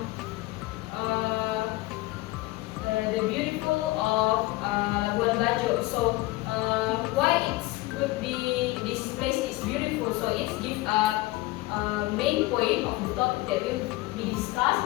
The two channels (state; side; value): quieter; right; 19.7 dB